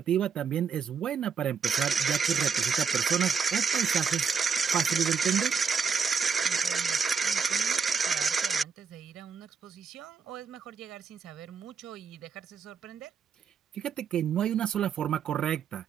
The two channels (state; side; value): quieter; left; 6.1 dB